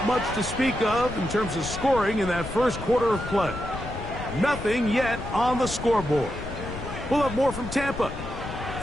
much to speak of in terms of scoring in that 1st quarter of play. Nothing yet on the scoreboard. We'll have more from Tampa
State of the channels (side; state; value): left; noise; rumble, 9 dB below the sound